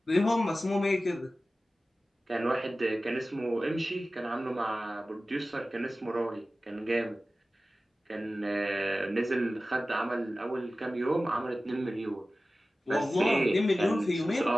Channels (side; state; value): both; normal; correlation 0.96